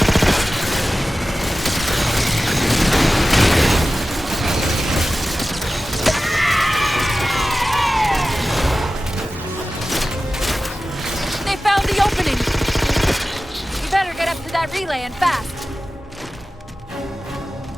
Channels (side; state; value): both; normal; correlation 0.95